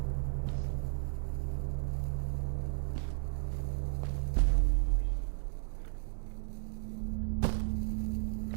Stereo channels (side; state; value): left; silent; digital silence